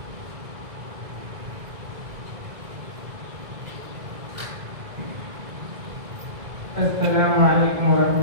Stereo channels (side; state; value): left; late; 2.0 ms